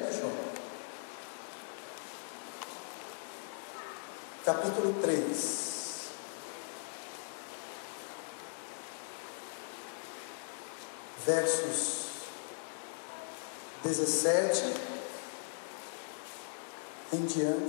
de João. Capítulo 3. Versos 17 em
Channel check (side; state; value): right; silent; digital silence